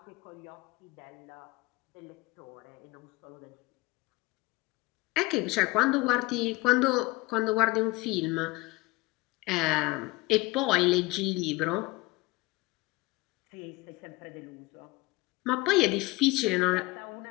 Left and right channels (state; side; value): quieter; right; 22.4 dB